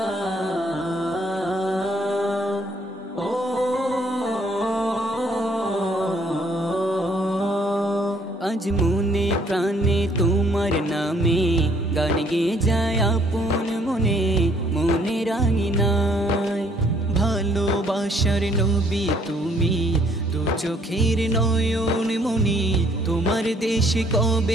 আজ মনে প্রাণে তোমার নামে গান গেয়ে যায় আপন মনে, মনে রাঙিনায় ভালোবাসার নবী তুমি, দু চোখের নয়ন মনি। তোমার দেশে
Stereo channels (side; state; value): both; normal; correlation 0.64